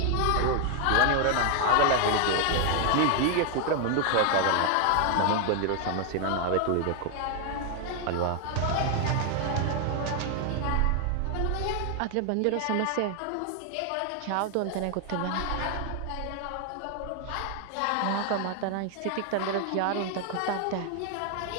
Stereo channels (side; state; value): both; different; correlation 0.00